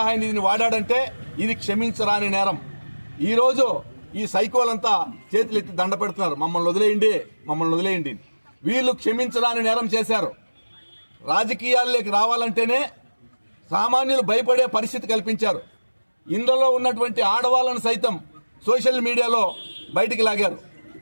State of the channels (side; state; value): both; inverted; correlation -1.00